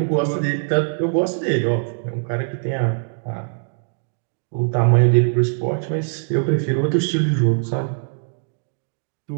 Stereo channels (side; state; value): left; silent; digital silence